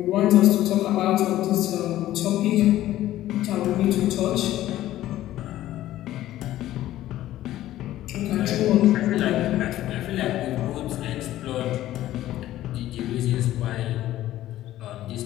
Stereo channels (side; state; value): right; quieter; 14.1 dB